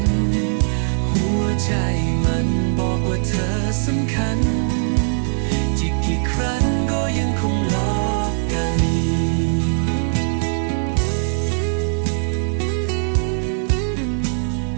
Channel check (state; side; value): silent; left; digital silence